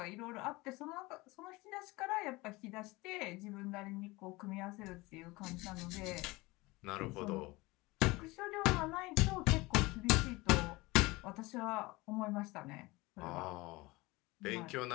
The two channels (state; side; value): quieter; right; 22.2 dB